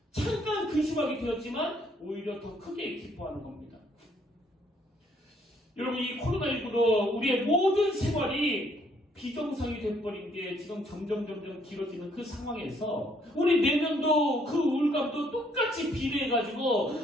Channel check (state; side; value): normal; both; correlation 0.67